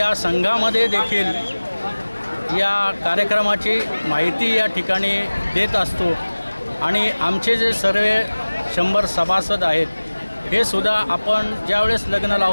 संघामध्ये देखील या कार्यक्रमाची माहिती या ठिकाणी देत असतो आणि आमचे जे सर्व 100 सभासद आहेत हे सुद्धा आपण ज्यावेळेस लग्न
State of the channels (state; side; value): inverted; both; correlation -1.00